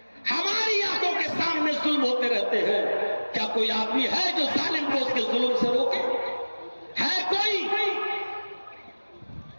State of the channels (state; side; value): inverted; both; correlation -1.00